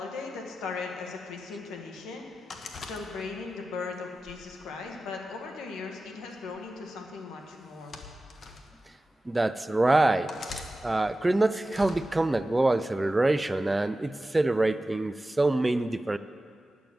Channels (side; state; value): both; normal; correlation 0.95